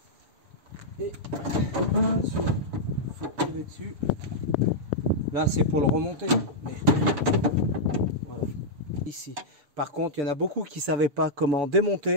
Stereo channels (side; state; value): left; late; 7.0 ms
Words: et attention, faut tirer dessus. Là c'est pour le remonter, mais voilà. Ici par contre il y en a beaucoup qui savaient pas comment